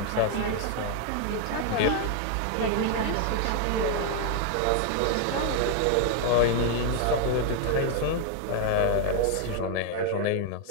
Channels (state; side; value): different; both; correlation 0.00